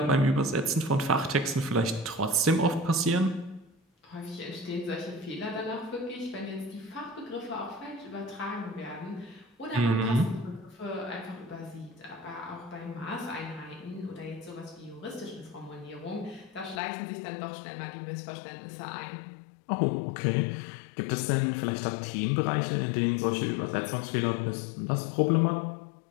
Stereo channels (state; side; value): drops out; right; at 16.8 s